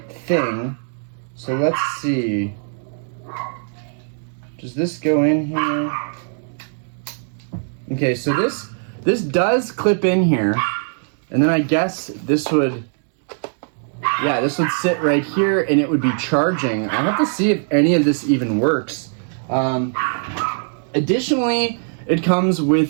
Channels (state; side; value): silent; left; 65 dB below the other